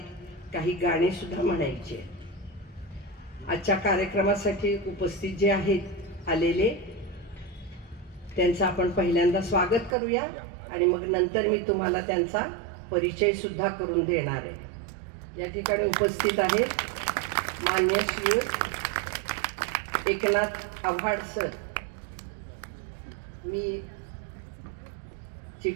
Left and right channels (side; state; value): left; drops out; at 10.0 s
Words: काही गाणी सुद्धा म्हणायची आहेत। आजच्या कार्यक्रमासाठी उपस्थित जे आहेत आलेले, त्यांचं आपण पहिल्यांदा स्वागत करूया आणि मग नंतर मी तुम्हाला त्यांचा परिचय सुद्धा करून देणार आहे। या ठिकाणी उपस्थित आहेत मान्य श्री एकनाथ आव्हाड सर। मी